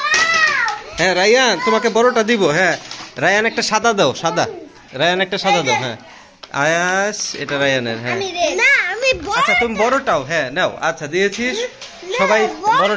হ্যাঁ রায়ান তোমাকে বড়টা দিব। হ্যাঁ রায়ান একটা সাদা দাও, সাদা। রায়ান একটা সাদা দাও। হ্যাঁ আয়াস, এটা রায়ানের। হ্যাঁ আচ্ছা তুমি বড়টাও হ্যাঁ নাও। আচ্ছা দিয়েছিস সবাই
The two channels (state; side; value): identical; both; correlation 1.00